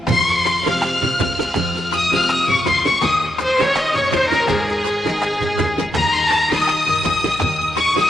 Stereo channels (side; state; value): both; normal; correlation 0.83